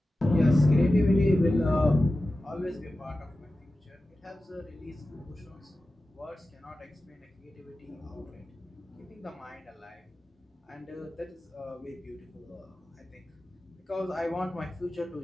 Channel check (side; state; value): both; normal; correlation 0.94